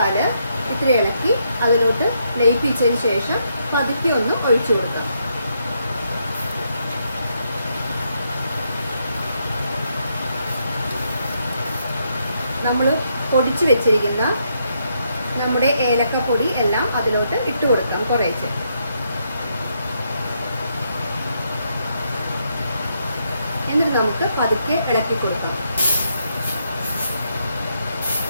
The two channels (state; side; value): inverted; both; correlation -0.78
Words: ഇത്തിരി ഇളക്കി അതിലോട്ട് ലയിപ്പിച്ചതിന് ശേഷം പതുക്കെ ഒന്ന് ഒഴിച്ചു കൊടുക്കാം. നമ്മൾ പൊടിച്ച് വെച്ചിരിക്കുന്ന നമ്മുടെ ഏലക്കപ്പൊടി എല്ലാം അതിലോട്ട് ഇട്ട് കൊടുക്കാം. കുറേശ്ശെ എന്നിട്ട് നമുക്ക് പതുക്കെ ഇളക്കി കൊടുക്കാം.